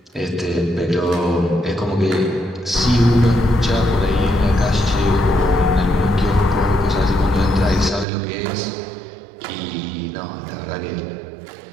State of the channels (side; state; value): left; drops out; at 8.1 s